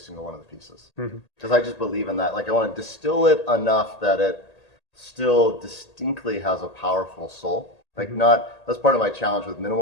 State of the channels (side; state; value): right; late; 1.8 ms